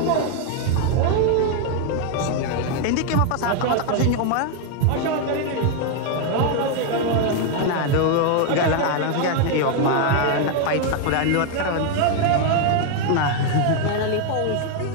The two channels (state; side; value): different; both; correlation 0.00